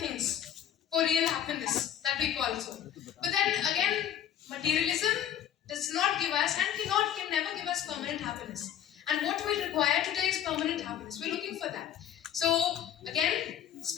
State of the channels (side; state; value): right; quieter; 10.3 dB